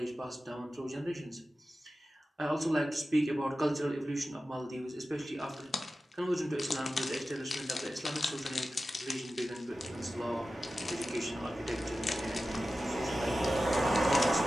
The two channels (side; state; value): both; normal; correlation 0.94